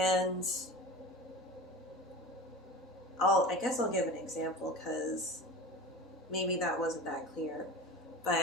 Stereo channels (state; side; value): normal; both; correlation 0.33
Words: I guess I'll give an example, because maybe that wasn't that clear.